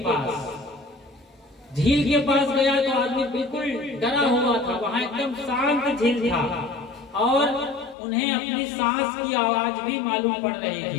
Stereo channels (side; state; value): right; drops out; at 8.0 s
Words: पास। झील के पास गया तो आदमी बिल्कुल डरा हुआ था। वहां एकदम शांत झील था और उन्हें अपनी सांस की आवाज भी मालूम पड़ रही